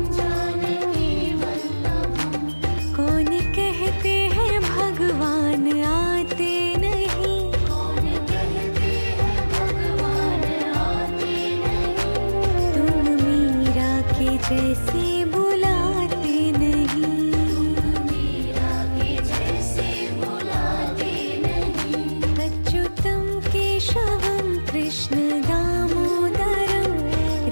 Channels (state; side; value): inverted; both; correlation -1.00